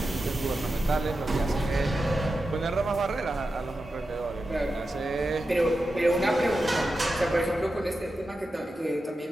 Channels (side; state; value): both; normal; correlation 0.91